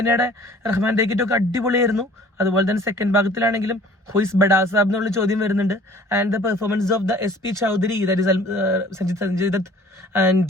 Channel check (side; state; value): both; normal; correlation 0.50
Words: റഹ്മാൻ ഡേക്കിറ്റൊക്കെ അടിപൊളിയായിരുന്നു. അതുപോലെ തന്നെ സെക്കൻഡ് ഭാഗത്തിലാണെങ്കിലും ഹുയിസ് ബഡാ സാബ് എന്നുള്ള ചോദ്യം വരുന്നുണ്ട്. And the performance of the SP Chaudhary, that is Sanjay Dutt,